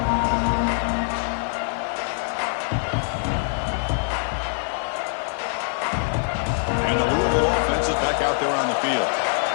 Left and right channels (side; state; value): right; silent; 63 dB below the other